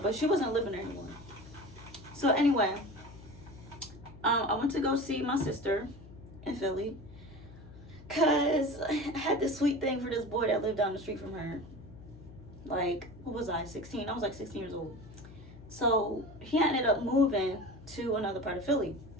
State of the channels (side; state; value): left; noise; hum, 18 dB below the sound